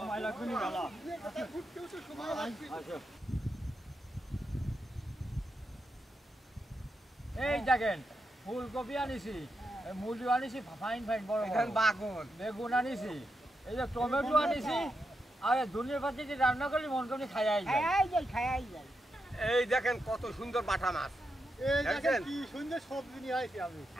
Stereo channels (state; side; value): normal; both; correlation 0.85